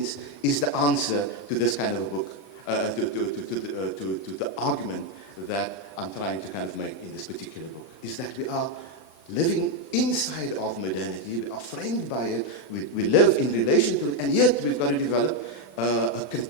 is the answer to this kind of a book, to the argument that I'm trying to kind of make in this particular book, is that we are living inside of modernity, we are framed by it, we live in relation to it, and yet we've got to develop a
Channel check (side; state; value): right; late; 32 ms